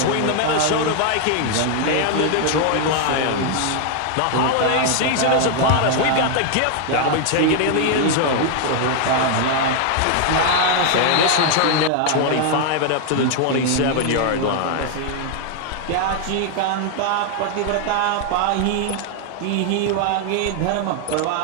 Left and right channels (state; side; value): different; both; correlation 0.00